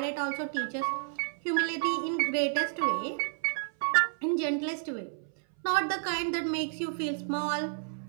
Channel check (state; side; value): silent; left; 57 dB below the other